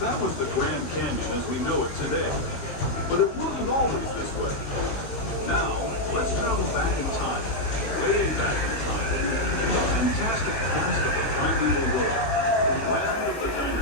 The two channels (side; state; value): right; late; 18 ms